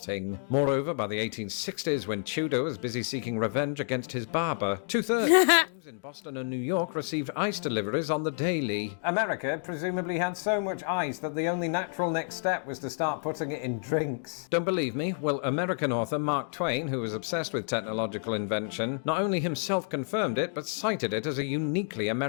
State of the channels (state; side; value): silent; right; 58 dB below the other